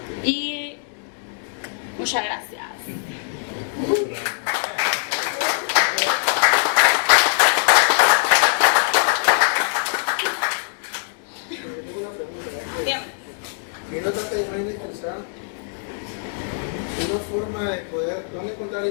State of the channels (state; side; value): silent; right; 64 dB below the other